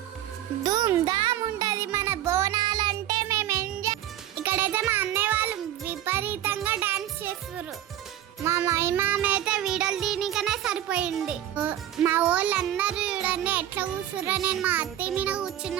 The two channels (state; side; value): quieter; left; 12.1 dB